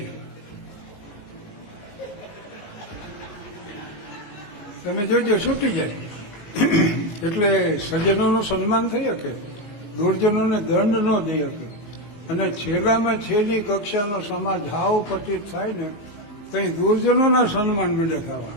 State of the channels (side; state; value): right; late; 19 ms